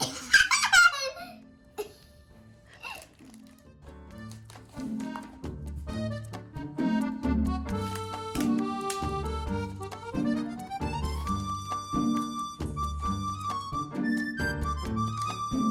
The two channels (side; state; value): both; identical; correlation 1.00